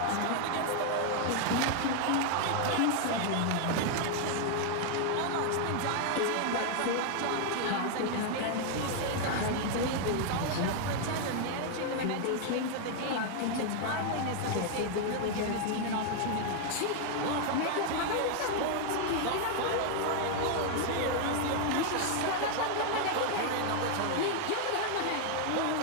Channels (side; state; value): both; different; correlation 0.00